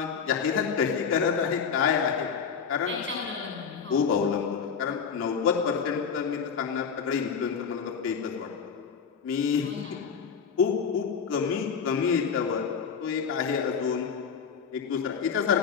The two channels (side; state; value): right; quieter; 6.5 dB